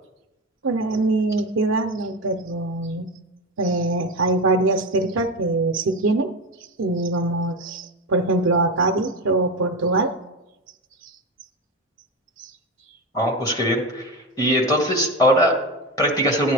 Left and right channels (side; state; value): both; normal; correlation 0.20